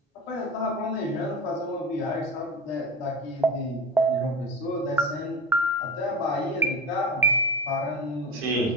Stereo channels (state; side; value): normal; both; correlation 0.27